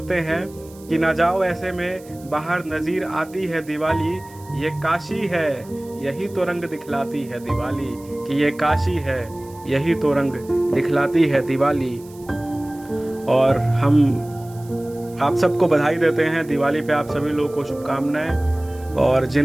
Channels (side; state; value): right; noise; hiss, 24 dB below the sound